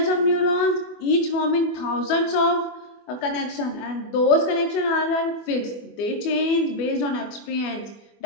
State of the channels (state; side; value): late; right; 24 ms